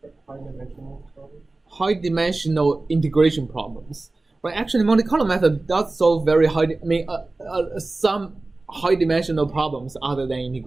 High-dimensional integration problems. But actually, Monte Carlo method does solve very some high-dimensional problems other than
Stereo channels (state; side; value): quieter; left; 3.2 dB